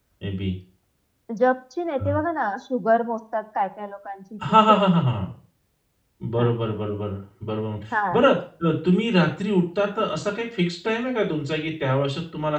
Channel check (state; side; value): identical; both; correlation 1.00